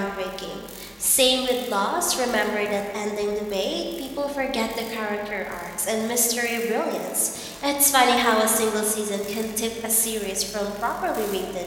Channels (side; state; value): both; identical; correlation 1.00